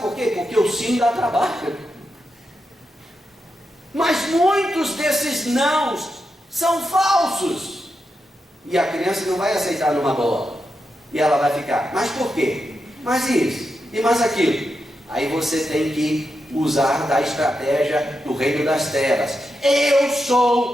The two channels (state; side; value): normal; both; correlation 0.87